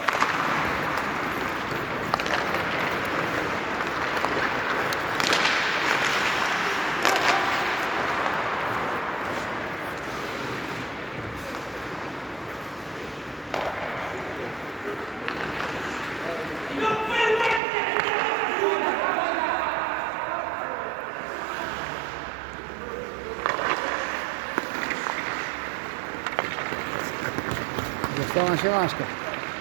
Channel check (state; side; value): drops out; left; at 17.6 s